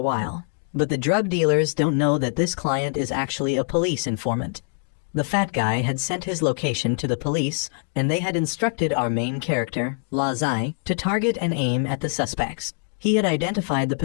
But the drug dealers don't know that this client is actually a police informant. The fat guy had sent his location to the police, and they had instructed our main character, Lazai, to target and aim at the suspects. He had identified the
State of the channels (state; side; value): silent; right; digital silence